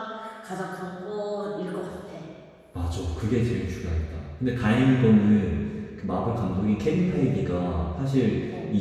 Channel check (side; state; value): both; identical; correlation 1.00